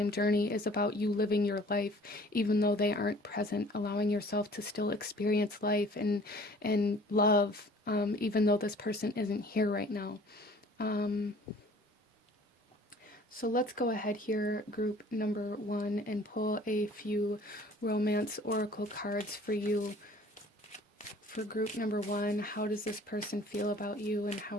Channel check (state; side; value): normal; both; correlation 0.51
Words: journey is about you living your life even though they aren't present, allowing yourself to still experience life and love, even though this person isn't here right now. So let's go ahead here, group number one, and pull a few romance oracle cards for you. For group number one, how does this person feel about you and how